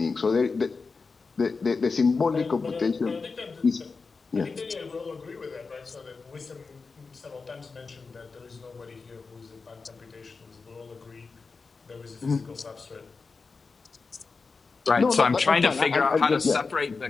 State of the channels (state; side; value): quieter; right; 4.5 dB